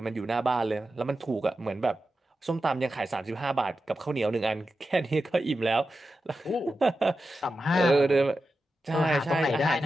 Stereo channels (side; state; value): both; normal; correlation 0.91